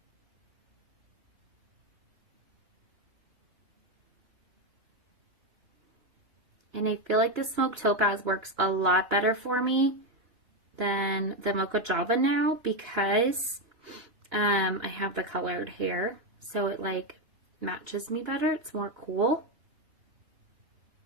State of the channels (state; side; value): late; left; 2.9 ms